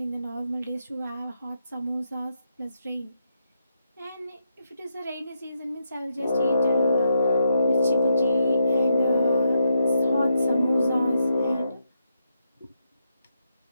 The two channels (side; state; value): both; inverted; correlation -0.81